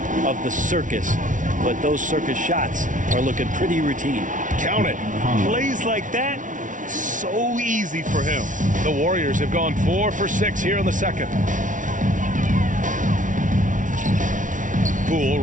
of the circus, but those circus shots are looking pretty routine. Count it. Plays like that, so easy for him. The Warriors have gone 4 for 6 here in the second. Poole,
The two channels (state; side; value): late; left; 0.37 ms